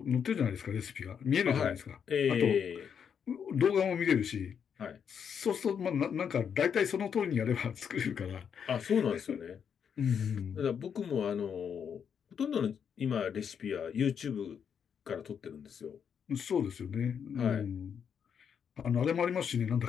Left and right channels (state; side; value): quieter; right; 7.5 dB